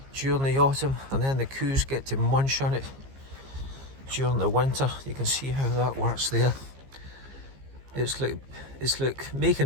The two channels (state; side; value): late; left; 15 ms